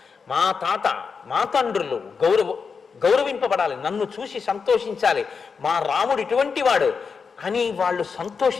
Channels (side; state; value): right; quieter; 5.5 dB